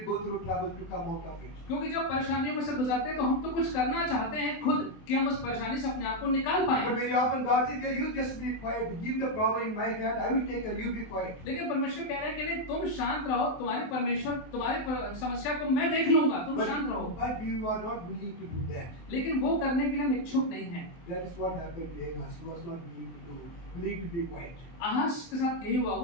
go through trouble to come out of it. क्योंकि जब परेशानियों में से गुजरते हैं तो हम तो कुछ करना चाहते हैं खुद कि हम उस परेशानी से अपने आप को निकाल पाएं। But very often God says, "Yeah, you just be quiet. Give the problem in my hand. I will take care. You be quiet." लेकिन परमेश्वर कह रहे हैं कि नहीं, तुम शांत रहो, तुम्हारे परमेश्वर तुम्हारी समस्या को मैं देख लूंगा, तुम शांत रहो। But you are not willing to do that. लेकिन वो करने के लिए हम इच्छुक नहीं हैं। That is what happened to Ahaz. He was not willing to be quiet. आहाज के साथ यही हुआ,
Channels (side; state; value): right; late; 23 ms